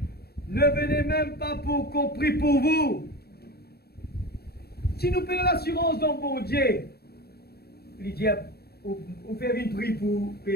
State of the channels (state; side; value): late; right; 0.46 ms